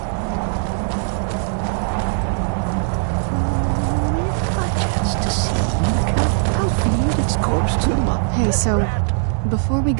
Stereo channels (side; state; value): left; silent; digital silence